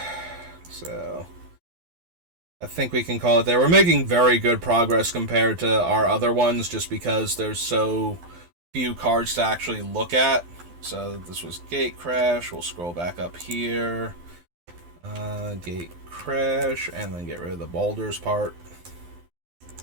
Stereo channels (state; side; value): late; left; 12 ms